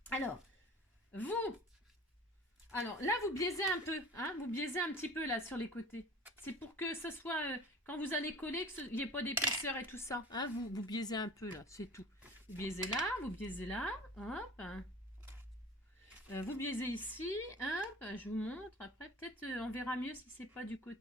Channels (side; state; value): both; normal; correlation 0.42